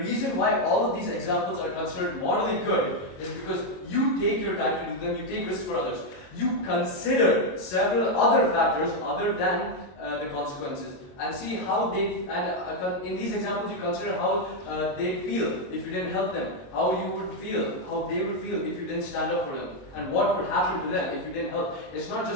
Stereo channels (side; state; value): right; late; 22 ms